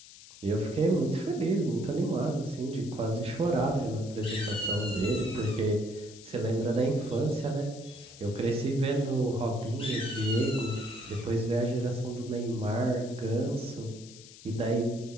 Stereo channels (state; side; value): noise; left; hiss, 18 dB below the sound